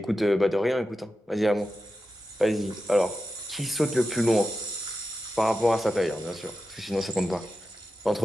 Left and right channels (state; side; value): normal; both; correlation 0.91